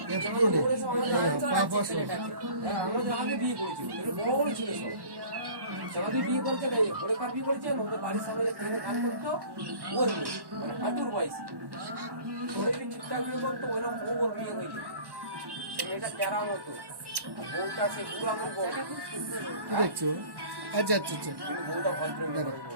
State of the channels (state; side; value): late; left; 1.1 ms